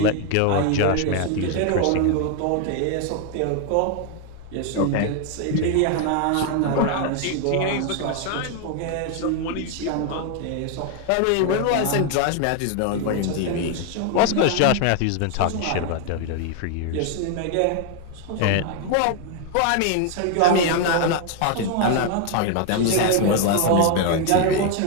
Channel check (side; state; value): both; different; correlation 0.01